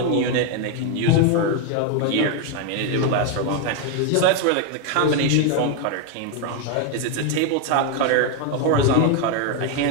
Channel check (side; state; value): both; different; correlation 0.01